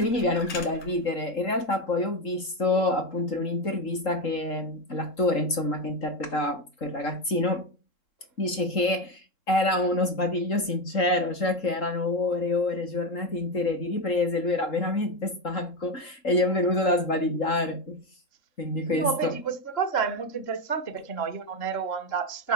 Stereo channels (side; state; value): right; late; 3.8 ms